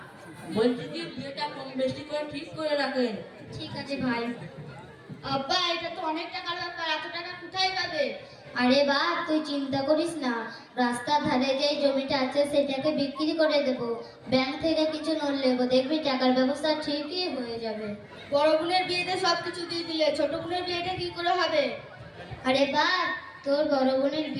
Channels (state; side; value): identical; both; correlation 1.00